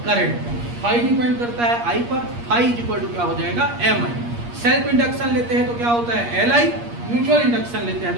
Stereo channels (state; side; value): late; left; 8.5 ms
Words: करंट पर। फाई डिपेंड करता है आई पर। फाई इज इक्वल टू क्या हो जाएगा? एम आई। सेल्फ इंडक्शन लेते हैं तो क्या होता है? L I. म्यूचुअल इंडक्शन लेते हैं